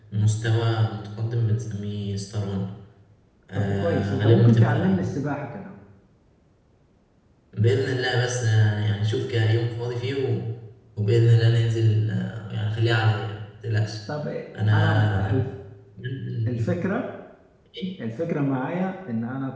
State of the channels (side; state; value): both; identical; correlation 1.00